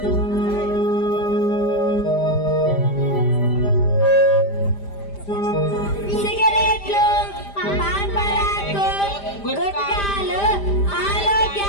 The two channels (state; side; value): late; right; 5.0 ms